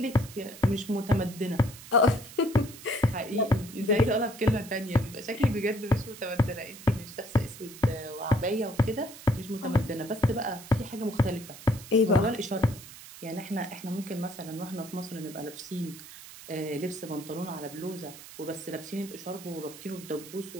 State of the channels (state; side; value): noise; right; hiss, 16 dB below the sound